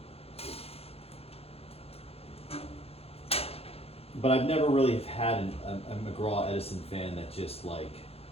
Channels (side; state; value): right; late; 0.29 ms